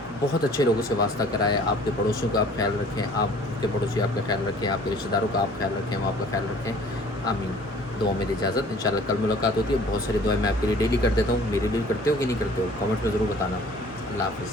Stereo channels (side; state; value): both; normal; correlation 0.51